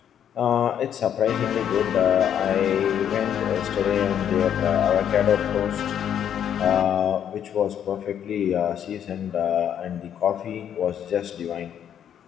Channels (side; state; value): right; quieter; 9.4 dB